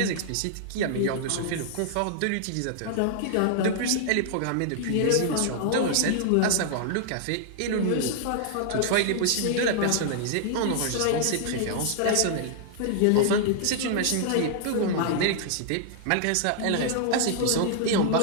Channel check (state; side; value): different; both; correlation -0.01